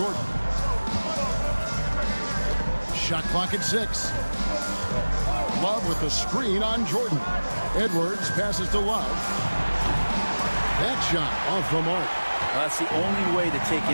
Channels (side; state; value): both; inverted; correlation -1.00